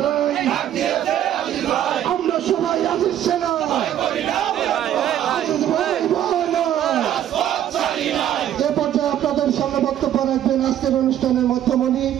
নাই, আমরা সবাই আজিজ সেনা, আজিজ ভাই বলো। এ পর্যায়ে আপনাদের সামনে বক্তব্য রাখবেন আজকের অনুষ্ঠানের মধ্যমণি,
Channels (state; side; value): quieter; left; 11.1 dB